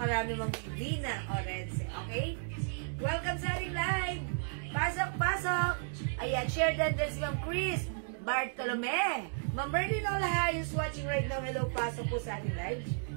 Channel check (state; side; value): silent; left; digital silence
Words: Ma'am Vivina Orense. Okay? Welcome sa ating live. Pasok. Ayan, share din si Ma'am Chris Bartolome. Ma'am Berlin Olaha is watching right now. Hello, pasok po sa ating live.